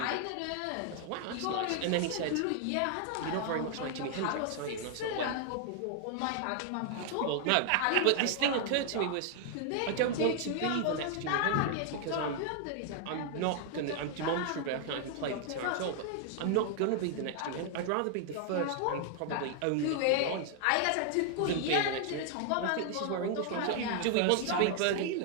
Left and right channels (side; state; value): both; different; correlation 0.00